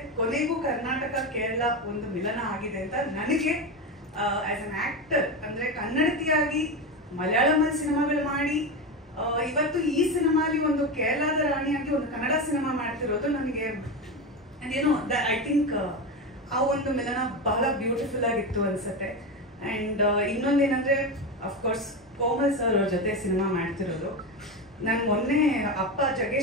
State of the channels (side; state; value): both; normal; correlation 0.18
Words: ಕೊನೆಗೂ ಕರ್ನಾಟಕ ಕೇರಳ ಒಂದು ಮಿಲನ ಆಗಿದೆ ಅಂತ ನನಗೆ ಆಸ್ ಅನ್ ಆಕ್ಟರ್, ಅಂದರೆ ಕನ್ನಡತಿಯಾಗಿ ಮಲಯಾಳಮಲ್ಲಿ ಸಿನಿಮಾಗಳು ಮಾಡಿ ಇವತ್ತು ಈ ಸಿನಿಮಾಲಿ ಒಂದು ಕೇರಳದ ರಾಣಿಯಾಗಿ ಒಂದು ಕನ್ನಡ ಸಿನಿಮಾ ಮಾಡ್ತಿರೋದು ನನಗೆ ಅದೇನೋ ಐ ಥಿಂಕ್ ಆ ಒಂದು ಮಿಲನ ಬಹಳ ಬ್ಯೂಟಿಫುಲ್ ಆಗಿತ್ತು ಅನ್ಸುತ್ತೆ. ಆ್ಯಂಡ್ ಇನ್ನೊಂದೇನಂದ್ರೆ ಅಫ್ಕೋರ್ಸ್ ಕೋಮಲ್ ಸರ್ ಅವ್ರ ಜೊತೆ ಸಿನಿಮಾ ಮಾಡ್ತಿರೋದು. ನಾನು ಮೊನ್ನೆ ಅಪ್ಪ